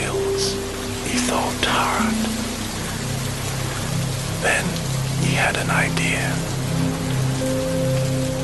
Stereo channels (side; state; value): both; identical; correlation 1.00